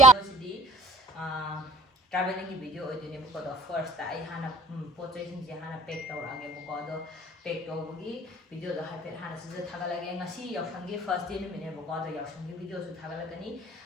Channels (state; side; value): normal; both; correlation 0.50